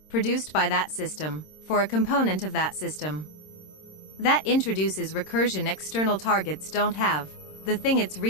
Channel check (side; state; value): right; late; 26 ms